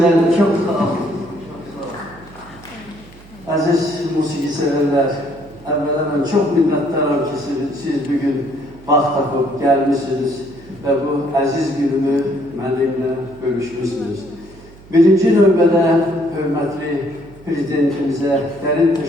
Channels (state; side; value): noise; right; hum, 22 dB below the sound